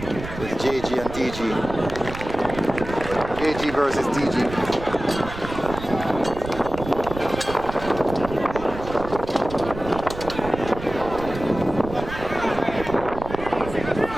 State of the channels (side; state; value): right; noise; rumble, 10 dB below the sound